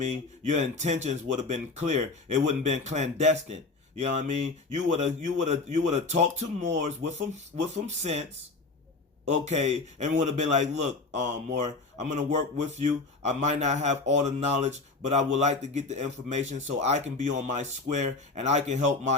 Your intentions would have been clear. It wouldn't have been clandestine. You know what I mean? You would have talked to Moors with some sense. Okay, and would have been like, look, Moore, I'm gonna work with you. I might not have all the knowledge, but I would like to get the information so I can be on my square and I can help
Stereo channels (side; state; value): right; quieter; 3.7 dB